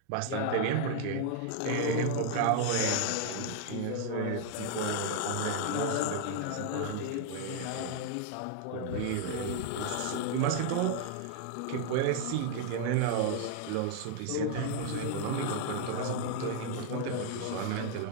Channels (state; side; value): different; both; correlation 0.00